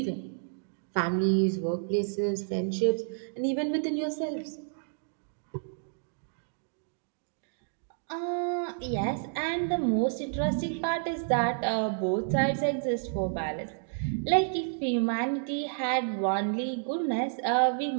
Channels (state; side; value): silent; left; digital silence